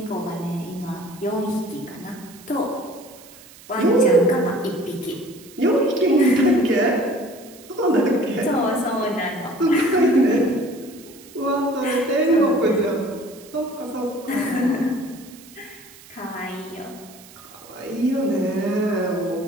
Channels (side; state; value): right; noise; hiss, 21 dB below the sound